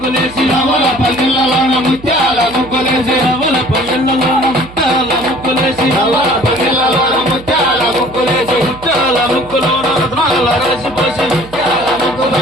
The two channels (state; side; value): noise; right; hum, 18 dB below the sound